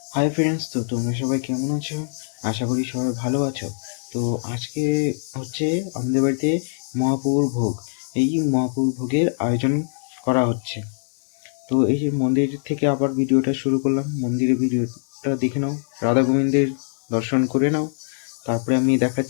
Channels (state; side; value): silent; right; digital silence